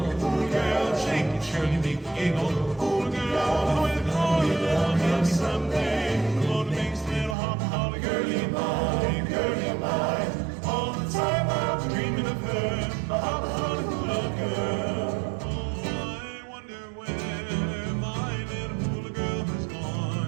Hula girl, shake it, surely make me giggle. Hula girl, with all your love, maybe someday the Lord makes little hula girlie mine, girlie mine. All the time I was dreaming of her, my hula girl.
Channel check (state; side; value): drops out; left; at 7.4 s